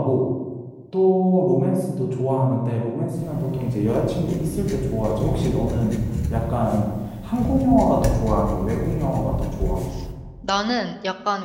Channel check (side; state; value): both; identical; correlation 1.00